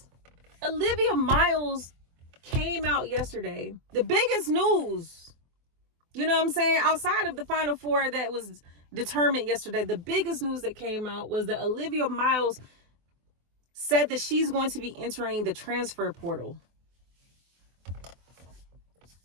Olivia Miles came out yesterday. The biggest news, you know what I'm saying? Outside of the Final Four that was determined yesterday, the biggest news that came out was that Olivia Miles said that she's going to be entering the transfer portal.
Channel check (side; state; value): left; late; 24 ms